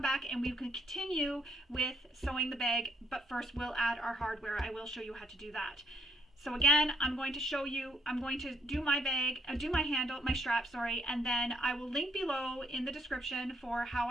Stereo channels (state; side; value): normal; both; correlation 0.72